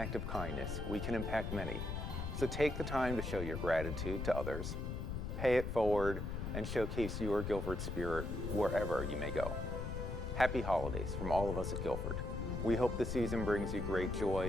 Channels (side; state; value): left; noise; rumble, 4 dB below the sound